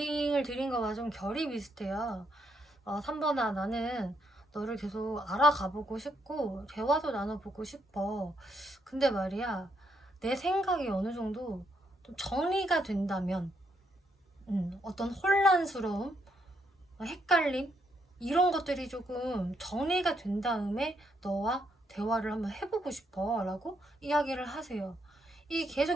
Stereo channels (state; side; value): normal; both; correlation 0.75